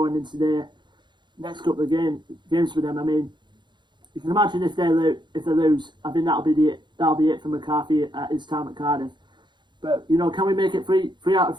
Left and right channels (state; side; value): late; left; 0.22 ms